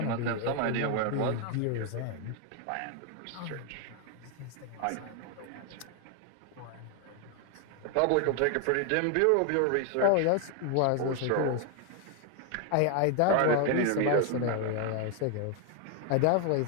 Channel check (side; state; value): both; different; correlation 0.00